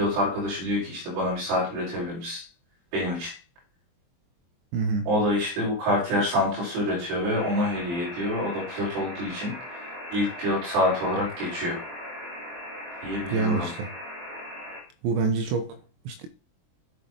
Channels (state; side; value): late; left; 23 ms